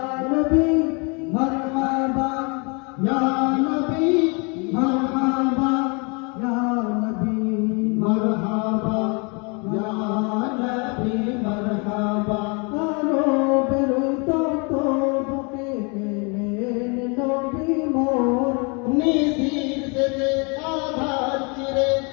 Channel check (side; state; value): right; quieter; 32.5 dB